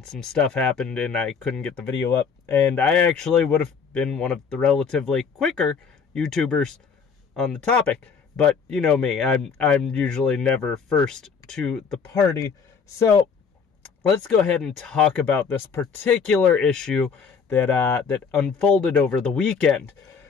some stuff happened and I couldn't get the video up, and I actually would have been one of the relatively quicker YouTubers on the topic, but you know me, I'm usually never first to the party, so let's go ahead and talk about this particular issue that unfolded over the weekend.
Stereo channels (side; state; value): right; quieter; 6.0 dB